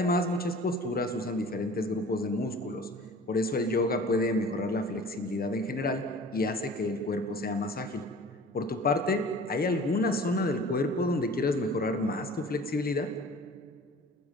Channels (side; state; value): both; normal; correlation 0.44